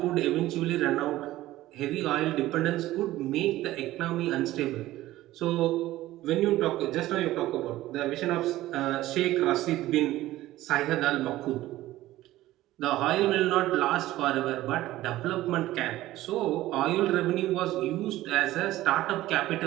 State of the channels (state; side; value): quieter; left; 15.8 dB